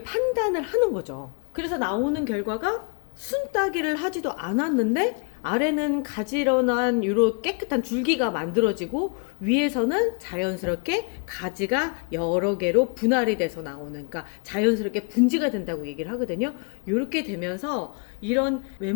판단을 하는 거죠. 그래서 나오는 결과가 순따기를 하지도 않았는데 아래는 가지런한 이런 깨끗한 줄기가 만들어지고 위에서는 자연스럽게 가지가 여러 개로 분할이 돼서 나오는, 그러니까 자연스럽게 분지가 된다고 얘기를 하거든요. 이렇게 되면서 이런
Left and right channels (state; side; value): quieter; right; 36.6 dB